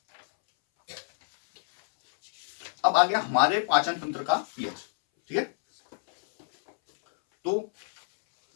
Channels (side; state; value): right; silent; 60 dB below the other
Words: अब आ गया हमारे पाचन तंत्र का पीएच। ठीक है, तो